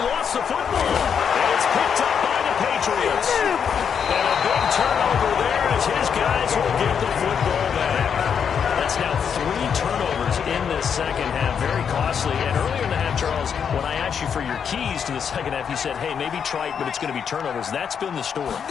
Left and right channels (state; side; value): quieter; right; 7.3 dB